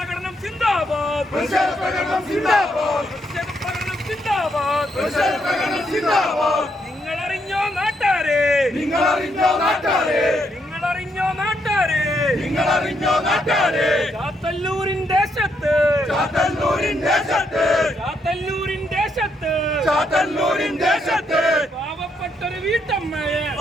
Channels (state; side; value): normal; both; correlation 0.76